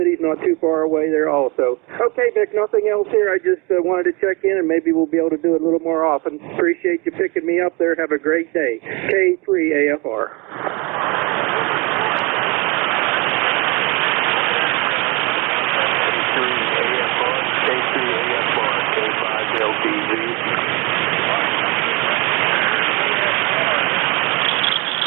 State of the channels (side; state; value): left; quieter; 27.9 dB